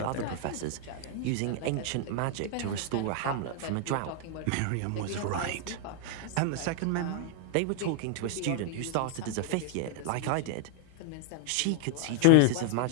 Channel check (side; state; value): both; different; correlation 0.00